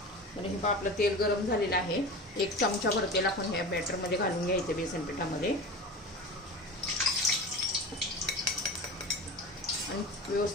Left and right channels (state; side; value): normal; both; correlation 0.31